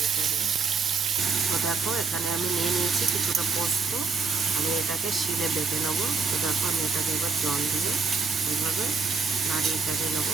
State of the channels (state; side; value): quieter; left; 4.8 dB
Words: চাড়িয়ে। তো দেখো এখানে আমি নিয়ে নিয়েছি কিছুটা পোস্ত, আমি এটাকে শিলে বেটে নেবো। তো দেখো আমি এটাকে এবার জল দিয়ে এইভাবে নাড়িয়ে চাড়িয়ে